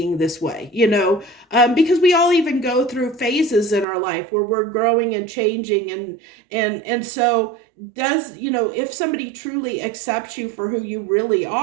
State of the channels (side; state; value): left; drops out; at 3.9 s